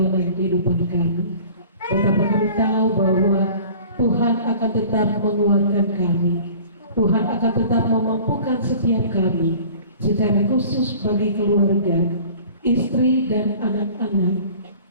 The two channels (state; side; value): inverted; both; correlation -0.46